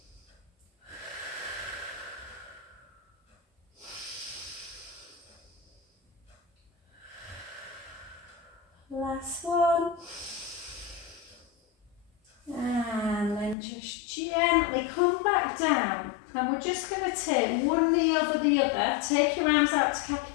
Last one. And then just gently come back down. And we're just going to take one knee over the other. Take your arms out to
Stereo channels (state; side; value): drops out; right; at 13.6 s